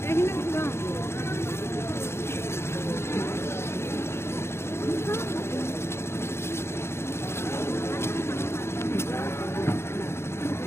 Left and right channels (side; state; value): right; late; 0.12 ms